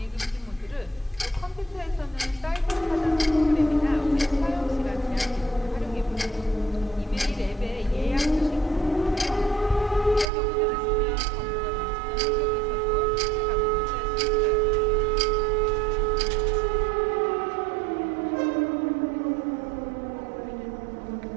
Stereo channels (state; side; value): drops out; left; at 10.3 s